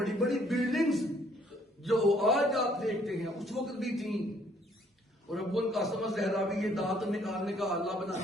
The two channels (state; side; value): normal; both; correlation 0.64